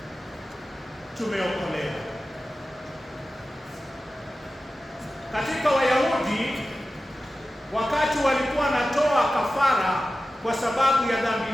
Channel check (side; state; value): both; normal; correlation 0.94